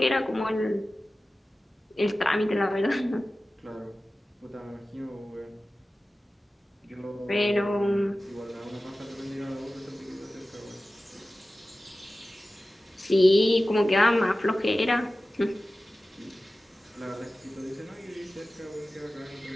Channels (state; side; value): normal; both; correlation 0.96